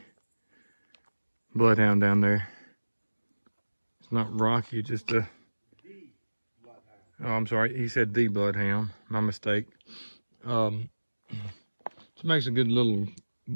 bloodhound down there. It's not rocky, it's just a, oh, I'm sorry, he said the bloodhound, my mistake. It makes a good little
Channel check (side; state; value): both; inverted; correlation -1.00